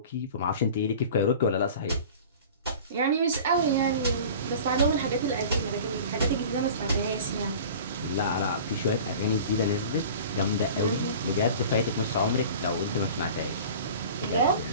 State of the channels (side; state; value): both; inverted; correlation -0.40